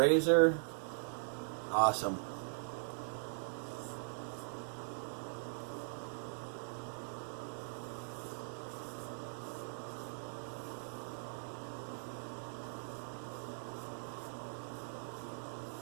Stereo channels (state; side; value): silent; left; digital silence